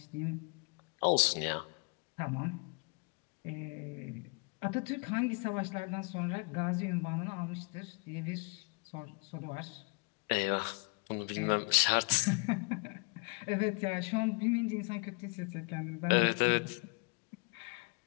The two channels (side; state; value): right; quieter; 34.3 dB